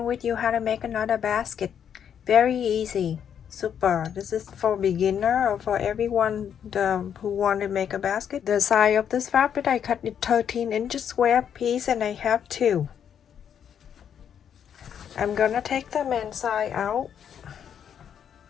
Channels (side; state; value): right; quieter; 8.5 dB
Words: with you how to make another basket. Very easy, super. This is for beginner or for everyone who want to make a basket. The size of this fabric, I cut it 13 inches square piece and I have two. I'm gonna take the main side out,